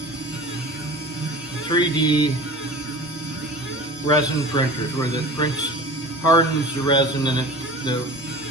3D resin printers where the prints hardens the resin and the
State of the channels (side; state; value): both; normal; correlation 0.37